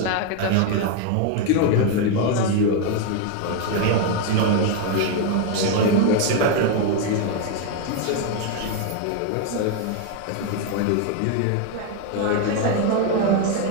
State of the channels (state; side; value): different; both; correlation 0.01